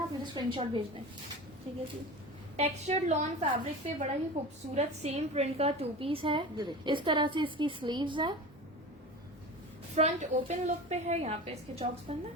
आप मुझे स्क्रीनशॉट भेज दें। ठीक है जी। टेक्सचर्ड लॉन फैब्रिक पे बड़ा ही खूबसूरत सेम प्रिंट का 2 पीस है। ये देखिए। इस तरह से इसकी स्लीव्स है। फ्रंट ओपन लुक पे है, यहाँ पे इसके चॉक्स बंद है।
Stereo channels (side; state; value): both; normal; correlation 0.32